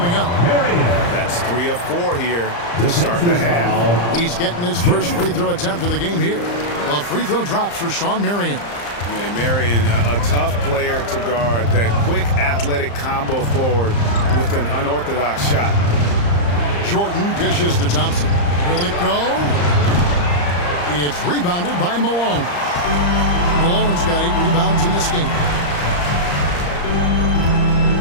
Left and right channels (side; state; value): right; late; 34 ms